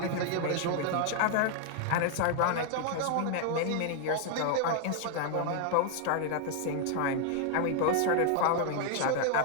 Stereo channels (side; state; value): both; different; correlation 0.00